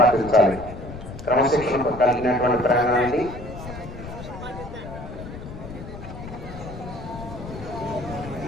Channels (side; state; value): left; noise; rumble, 12 dB below the sound